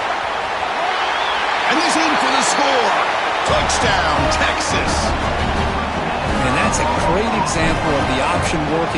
And he's in for the score. Touchdown, Texas. And that's a great example of the option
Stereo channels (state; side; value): identical; both; correlation 1.00